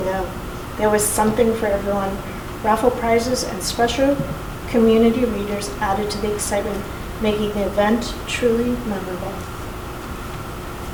There was something for everyone. Raffle prizes and special community readers added to the excitement, making the event truly memorable.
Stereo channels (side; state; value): both; identical; correlation 1.00